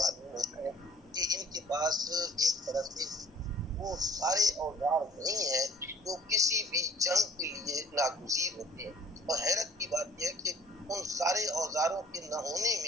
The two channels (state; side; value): normal; both; correlation 0.53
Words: ہوتا ہے کہ ان کے پاس ایک طرح سے وہ سارے اوزار نہیں ہیں جو کسی بھی جنگ کے لیے ناگزیر ہوتے ہیں. اور حیرت کی بات یہ ہے کہ ان سارے اوزاروں کے نہ ہونے